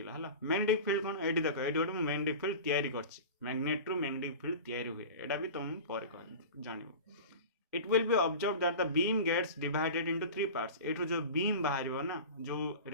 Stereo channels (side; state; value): both; inverted; correlation -0.33